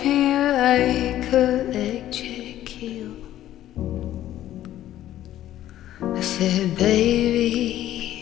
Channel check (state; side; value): quieter; right; 13.0 dB